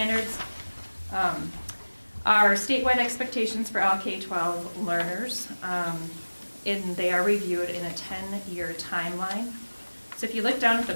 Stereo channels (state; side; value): inverted; both; correlation -1.00